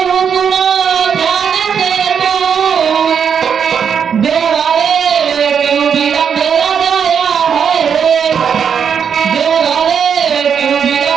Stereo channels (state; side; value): quieter; left; 7.3 dB